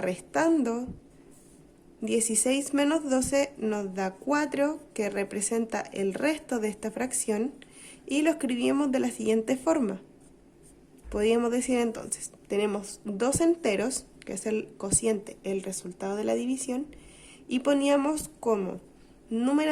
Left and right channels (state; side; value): identical; both; correlation 1.00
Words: 16 menos 12 nos da 4, que representa el resto de esta fracción. Y lo escribimos de la siguiente forma. Podríamos decir entonces, tenemos 2 enteros, que es el cociente, el resultado de la división, y poníamos como